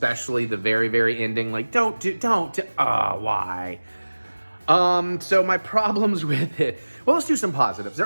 the very, very ending. Like, why? So my problems with it. Well, let's do some positives.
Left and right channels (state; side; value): inverted; both; correlation -1.00